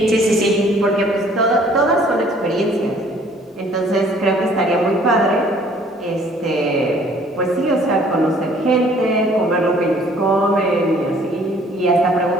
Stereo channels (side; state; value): both; normal; correlation 0.57